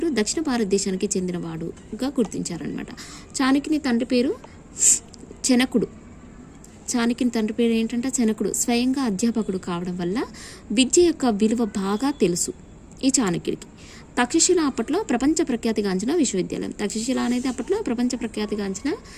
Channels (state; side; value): identical; both; correlation 1.00